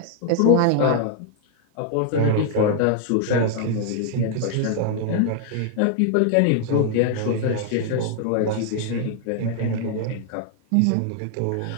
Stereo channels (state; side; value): different; both; correlation 0.00